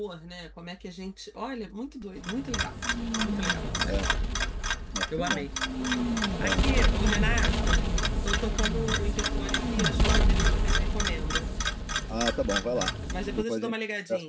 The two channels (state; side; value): identical; both; correlation 1.00